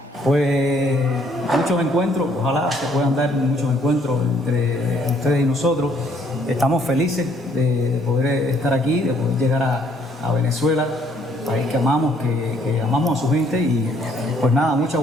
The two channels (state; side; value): normal; both; correlation 0.65